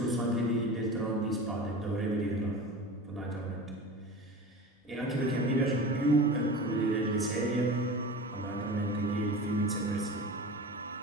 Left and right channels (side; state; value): both; normal; correlation 0.33